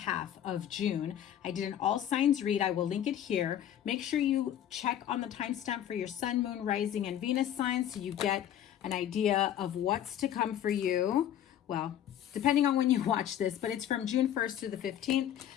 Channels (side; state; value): right; quieter; 10.7 dB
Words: of June, I did an all signs read. I will link it here. Make sure you check on the timestamp for your Sun, Moon, Rising, and Venus signs so you get an idea of what's to come for you. Well, depending on when you watch this, but it's from June 1st to the 15th